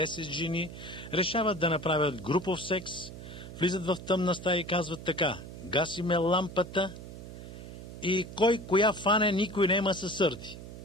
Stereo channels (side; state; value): right; noise; hum, 12 dB below the sound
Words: жени решават да направят групов секс, влизат в тъмна стая и казват така: гасиме лампата и кой коя фане, никой нема се сърди.